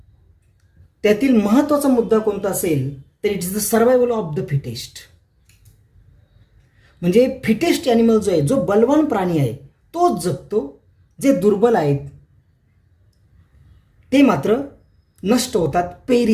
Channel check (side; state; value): both; identical; correlation 1.00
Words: त्यातील महत्त्वाचा मुद्दा कोणता असेल तर it is the survival of the fittest. म्हणजे फिटेस्ट ॲनिमल जो आहे, जो बलवान प्राणी आहे तोच जगतो. जे दुर्बल आहेत ते मात्र नष्ट होतात,